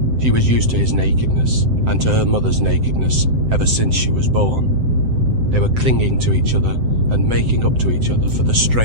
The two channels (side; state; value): left; late; 7.8 ms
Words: She was used to his nakedness, and to her mother's nakedness, ever since she was born. They were clinging to each other, and making up to each other for the